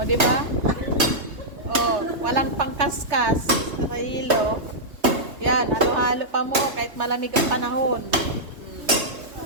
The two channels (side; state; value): left; late; 3.2 ms